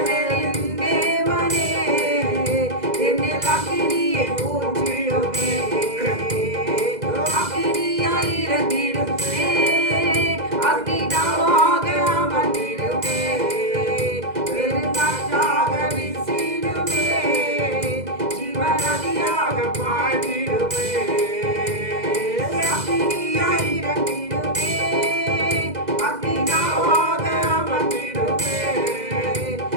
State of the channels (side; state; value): left; late; 2.0 ms